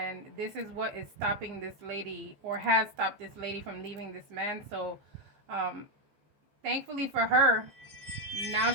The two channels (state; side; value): late; left; 15 ms